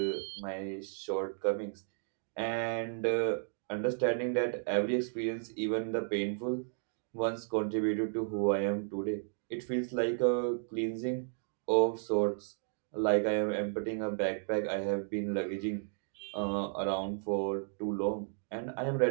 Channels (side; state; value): left; silent; digital silence